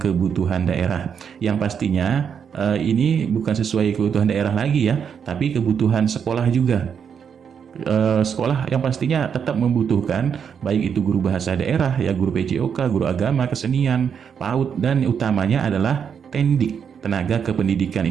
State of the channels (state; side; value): quieter; left; 7.3 dB